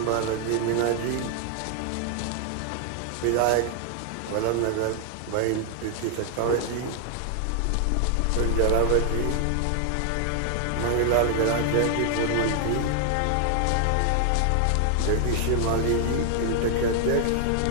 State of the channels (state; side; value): different; both; correlation 0.00